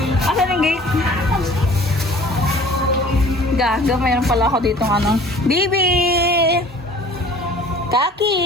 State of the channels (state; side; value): normal; both; correlation 0.48